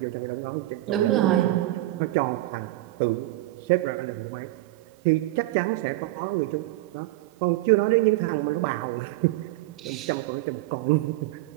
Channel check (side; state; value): left; quieter; 17.7 dB